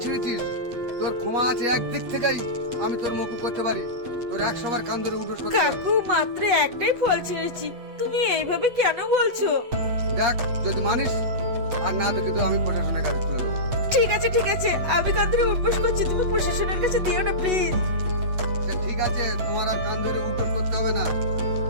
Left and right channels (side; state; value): left; late; 8.1 ms